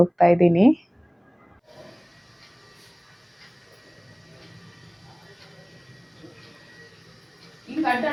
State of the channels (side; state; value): both; identical; correlation 1.00